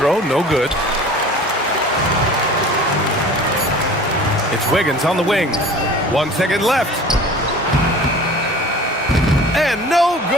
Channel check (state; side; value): normal; both; correlation 0.43